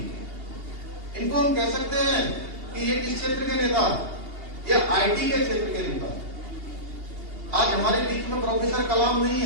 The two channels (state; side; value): late; left; 2.8 ms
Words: इनको हम कह सकते हैं कि ये किस क्षेत्र के नेता? ये आईटी के क्षेत्र के नेता। आज हमारे बीच में प्रोफेसर कलाम नहीं